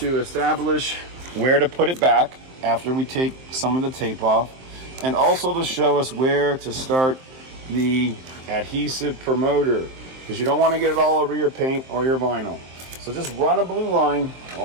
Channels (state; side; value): late; left; 23 ms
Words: to establish where to put it back after we take some of the tape off, and also to show us where to start the adhesive promoter, because you don't want to get it all over your paint or your vinyl. So just run a blue line